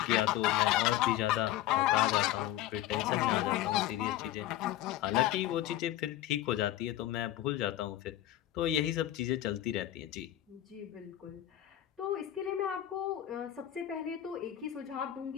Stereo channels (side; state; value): right; quieter; 13.3 dB